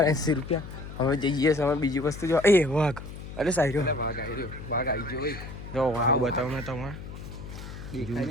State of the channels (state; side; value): noise; left; hum, 12 dB below the sound